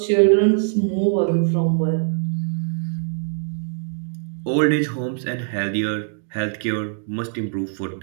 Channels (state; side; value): silent; left; digital silence